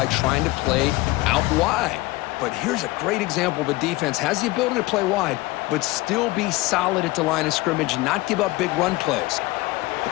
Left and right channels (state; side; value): quieter; right; 20.5 dB